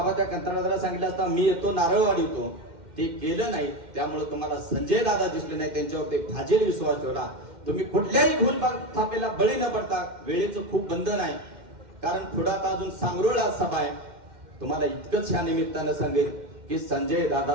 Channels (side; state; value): left; late; 2.1 ms